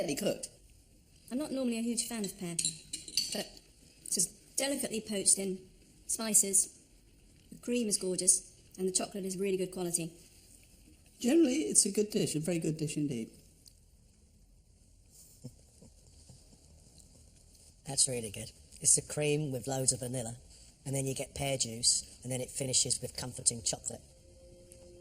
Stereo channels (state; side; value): identical; both; correlation 1.00